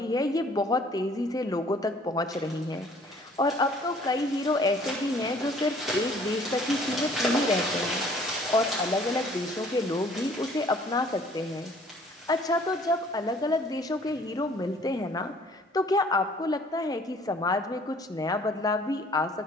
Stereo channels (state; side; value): normal; both; correlation 0.56